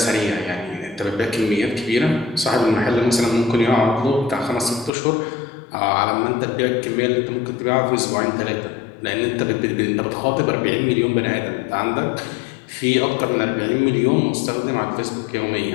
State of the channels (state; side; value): drops out; right; at 4.9 s